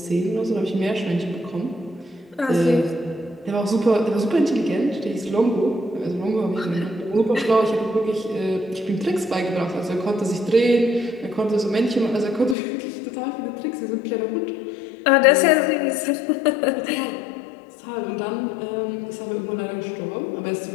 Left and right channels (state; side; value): drops out; right; at 12.6 s